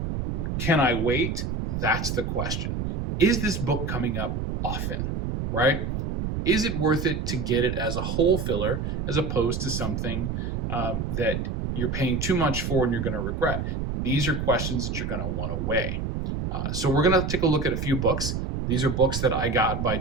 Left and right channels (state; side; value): noise; right; rumble, 2 dB below the sound